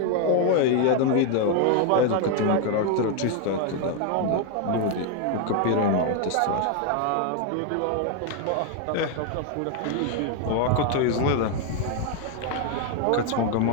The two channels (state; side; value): different; both; correlation 0.01